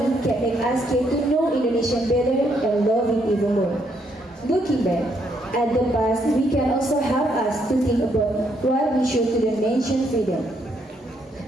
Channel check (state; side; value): normal; both; correlation 0.73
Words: can make us get to know Indonesia better and love it even more. Looking back at the past, we can also help us to think about what we should to the nation freedom,